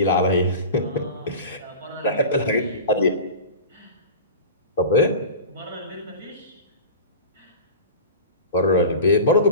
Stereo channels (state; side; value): inverted; both; correlation -0.33